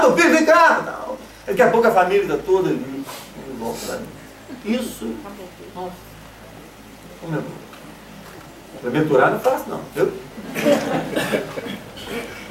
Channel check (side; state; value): both; identical; correlation 1.00